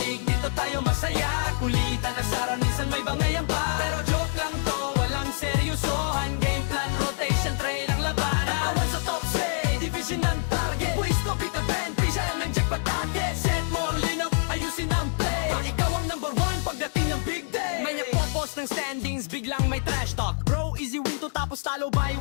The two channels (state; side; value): silent; right; 61 dB below the other